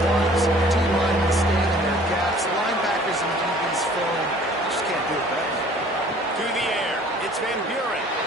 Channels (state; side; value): normal; both; correlation 0.52